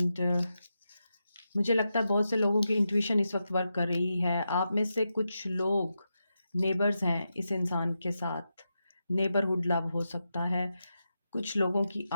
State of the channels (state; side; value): inverted; both; correlation -0.88